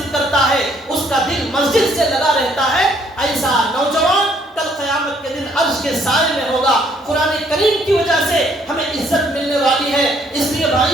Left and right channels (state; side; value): normal; both; correlation 0.66